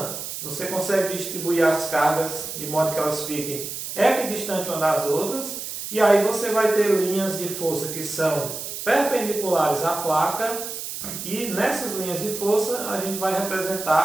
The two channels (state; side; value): noise; right; hiss, 7 dB below the sound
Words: você consegue distribuir as cargas de modo que elas fiquem equidistantes umas das outras e aí você vai ter linhas de força que são perpendiculares à placa e nessas linhas de força a gente vai